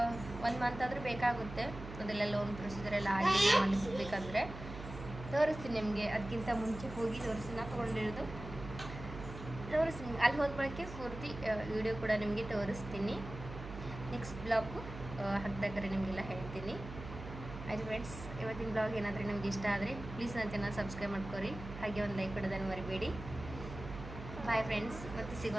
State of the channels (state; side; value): noise; right; hum, 11 dB below the sound